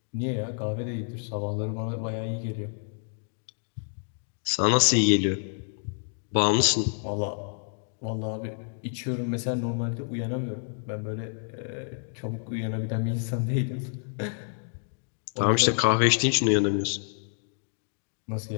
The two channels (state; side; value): silent; right; 59 dB below the other